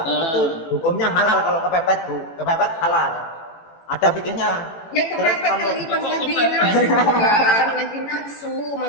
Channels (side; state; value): right; late; 18 ms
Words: itu hukumnya halal kalau kepepet Bu, kepepet halal. Ada fikihnya. Ya kepepet lagi pas lagi nafsu kan, lagi nafsu